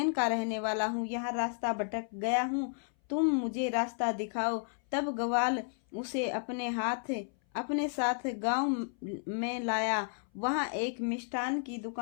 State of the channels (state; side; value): silent; right; 56 dB below the other